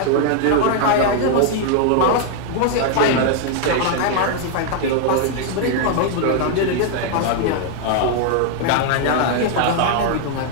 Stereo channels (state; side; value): different; both; correlation 0.00